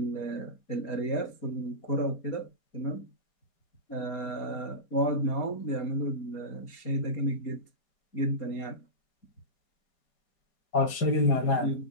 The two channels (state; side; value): late; right; 4.9 ms